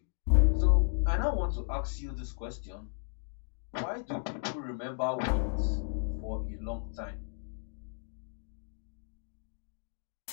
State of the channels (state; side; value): silent; right; 55 dB below the other